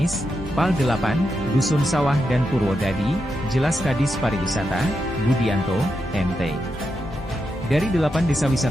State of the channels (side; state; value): both; normal; correlation 0.85